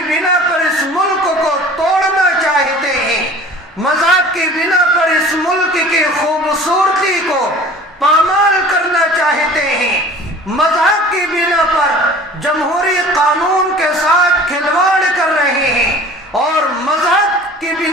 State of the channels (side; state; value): both; normal; correlation 0.44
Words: بنا پر اس ملک کو توڑنا چاہتے ہیں، مذہب کی بنا پر اس ملک کی خوبصورتی کو پامال کرنا چاہتے ہیں، مذہب کی بنا پر جمہوری قانون کے ساتھ کھلواڑ کر رہے ہیں، اور مذہب کی